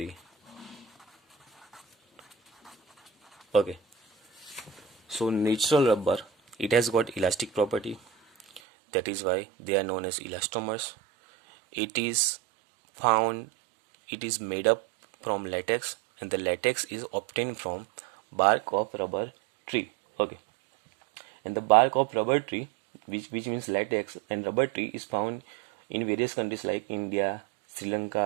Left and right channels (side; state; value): left; drops out; at 8.6 s